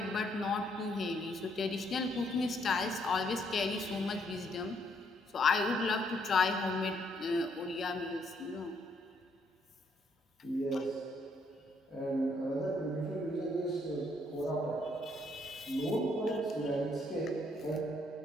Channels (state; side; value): normal; both; correlation 0.70